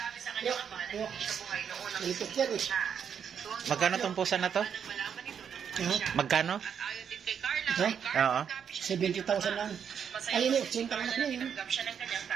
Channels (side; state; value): left; quieter; 7.7 dB